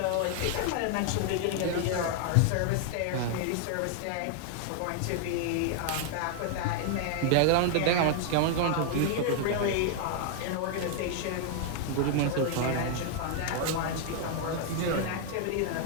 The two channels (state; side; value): different; both; correlation 0.00